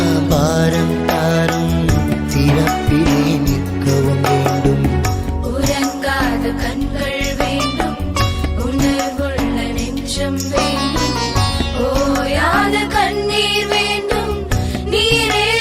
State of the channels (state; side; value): identical; both; correlation 1.00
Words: பாரம் தாரும், திறப்பிலே நிற்கவும் வேண்டும். உறங்காத கண்கள் வேண்டும், உணர்வுள்ள நெஞ்சம் வேண்டும், ஓயாத கண்ணீர் வேண்டும், நீரே